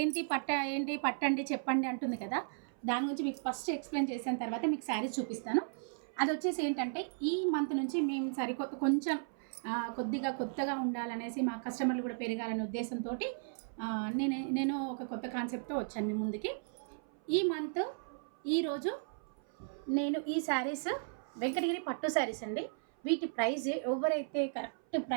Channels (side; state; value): left; silent; 54 dB below the other